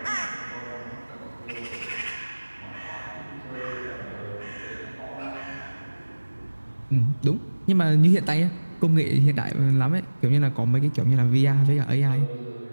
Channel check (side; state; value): both; inverted; correlation -1.00